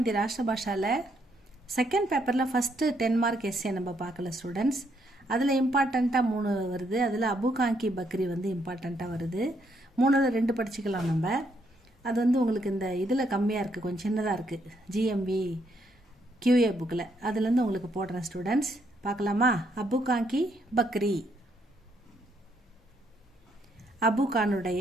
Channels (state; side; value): normal; both; correlation 0.73